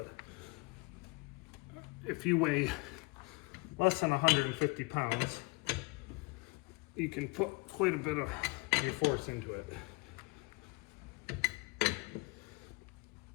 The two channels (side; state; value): right; quieter; 26.9 dB